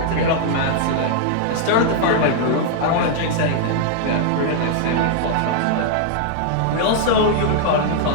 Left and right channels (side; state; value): both; different; correlation -0.01